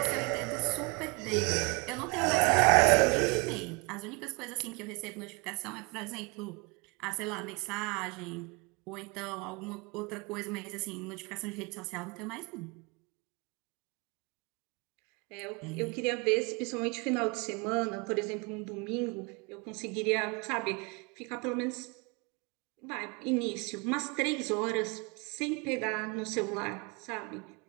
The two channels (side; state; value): left; quieter; 29.2 dB